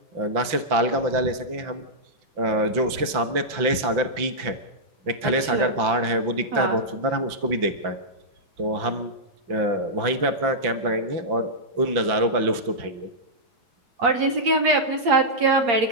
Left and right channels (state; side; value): late; left; 5.9 ms